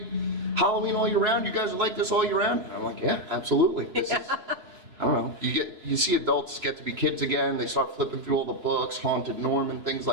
Halloween all year round, you guys are like this all year round? And I'm like, yeah, absolutely. This is, I don't know. You see adults get to be kids again, they start flipping through all the books, Haunted Norman, things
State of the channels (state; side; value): late; left; 3.0 ms